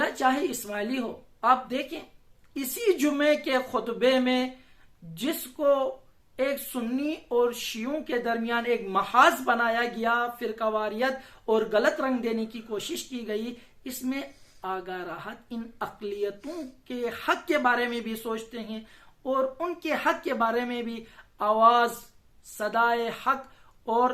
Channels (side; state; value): both; identical; correlation 1.00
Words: چاہے اسماعیلی ہو. آپ دیکھیں اسی جمعے کے خطبے میں جس کو ایک سنی اور شیعوں کے درمیان ایک محاذ بنایا گیا، فرقہ واریت اور غلط رنگ دینے کی کوشش کی گئی، اس میں آگاہ راحت ان اقلیتوں کے حق کے بارے میں بھی سوچتے ہیں اور ان کے حق کے بارے میں بھی آواز، صدائے حق